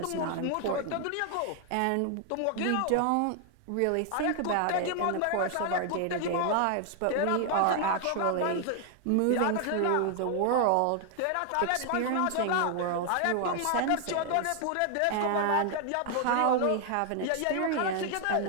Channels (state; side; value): different; both; correlation 0.00